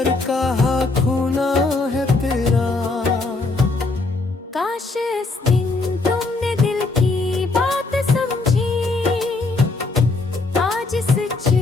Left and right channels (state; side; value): quieter; right; 3.5 dB